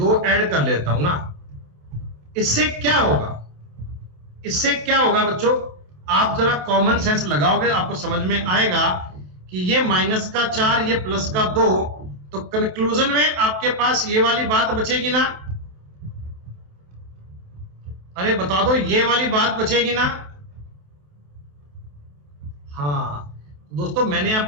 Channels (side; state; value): left; late; 28 ms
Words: ऐड कर लेता हूं ना। इससे क्या होगा बच्चों, आप जरा कॉमन सेंस लगाओगे, आपको समझ में आएगा कि ये माइनस का 4, ये प्लस का 2, तो कंक्लूजन में आपके पास ये वाली बात बचेगी ना। अरे बता दो, ये वाली बात बचेगी ना। हाँ दोस्तों मैंने